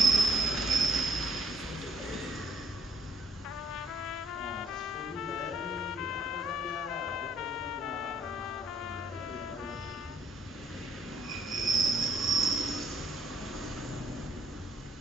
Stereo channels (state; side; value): normal; both; correlation 0.68